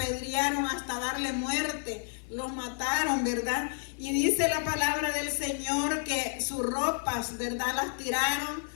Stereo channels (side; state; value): right; silent; 58 dB below the other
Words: hasta darle muerte, lo mataron, ¿verdad? Y dice la palabra del Señor que sus ropas, ¿verdad?, las tiraron